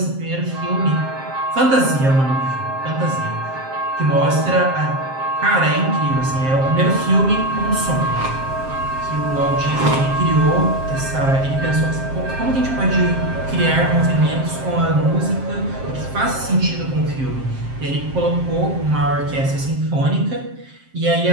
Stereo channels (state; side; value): late; left; 7.6 ms